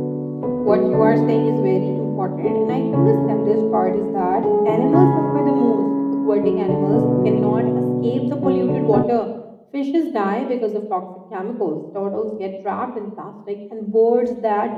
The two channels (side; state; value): both; identical; correlation 1.00